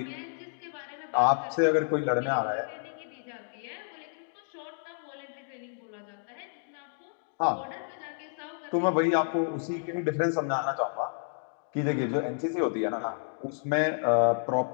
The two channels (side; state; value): right; silent; digital silence